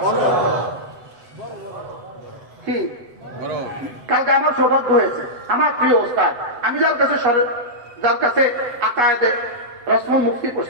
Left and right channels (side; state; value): left; late; 7.9 ms